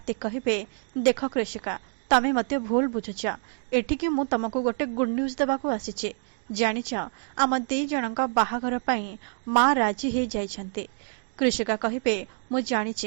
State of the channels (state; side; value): silent; left; digital silence